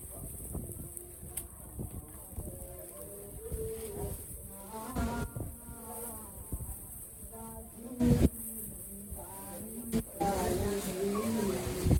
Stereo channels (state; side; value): identical; both; correlation 1.00